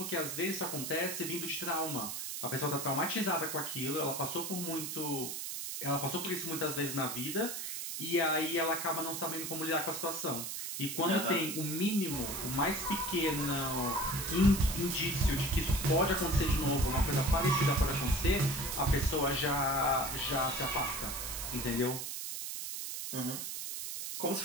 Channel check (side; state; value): right; noise; hiss, 5 dB below the sound